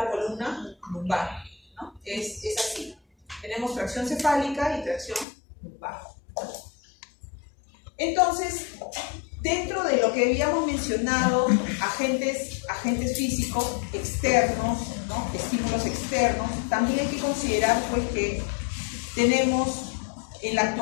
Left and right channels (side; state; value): right; drops out; at 5.2 s